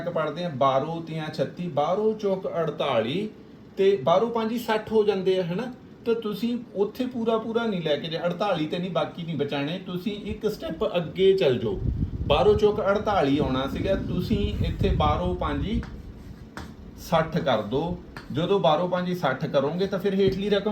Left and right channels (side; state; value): both; identical; correlation 1.00